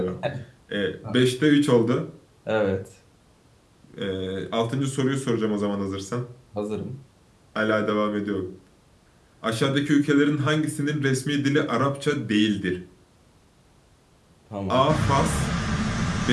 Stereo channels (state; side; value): identical; both; correlation 1.00